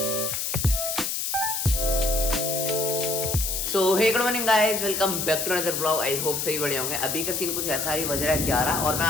So hey good morning guys, welcome back to another vlog. I hope सही बढ़िया होंगे। अभी का सीन कुछ ऐसा ही, बज रहा है 11 और मैं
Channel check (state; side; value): noise; left; hiss, 1 dB below the sound